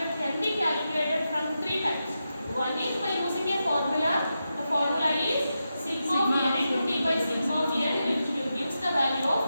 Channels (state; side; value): inverted; both; correlation -0.89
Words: can be calculated from 3 types. One is by using a formula. The formula is sigma of n into d by sigma of n, which gives the value of